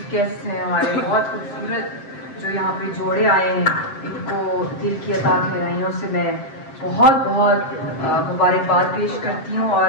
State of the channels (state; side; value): late; right; 7.6 ms